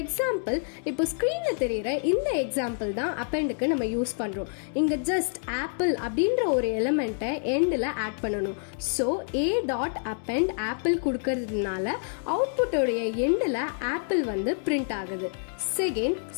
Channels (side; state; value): right; silent; 60 dB below the other